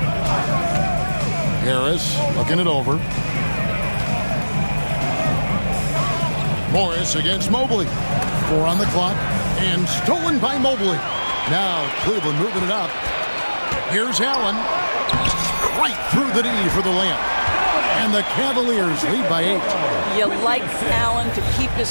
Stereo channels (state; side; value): inverted; both; correlation -1.00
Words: Harris looking it over. Morris against Mobley. 4 on the clock. And stolen by Mobley. Now Cleveland moving it up. Here's Allen. Right through the knee for the layup. And the Cavaliers lead by 8. You like Allen to keep his